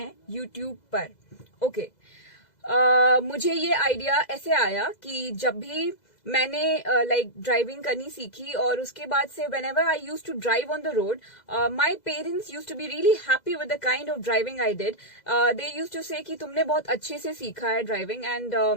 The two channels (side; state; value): right; late; 2.0 ms